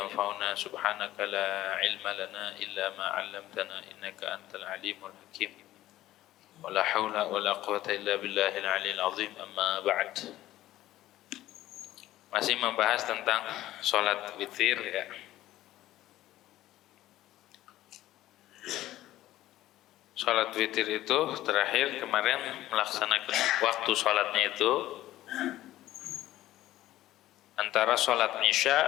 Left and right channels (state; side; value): quieter; right; 14.7 dB